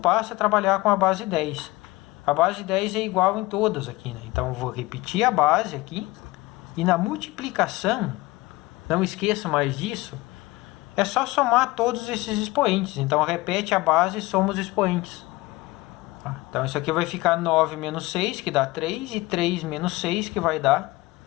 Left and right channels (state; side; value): quieter; right; 20.5 dB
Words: é trabalhar com a base 10. A base 10 é igual em todas aqui, né? Então eu vou repetir a base aqui. E na multiplicação, não esqueça mais disso, é só somar todos esses expoentes. Então repete a base e soma os expoentes. Então isso aqui vai ficar 9 menos 6, que dá 3, e 3 menos 6, que vai dar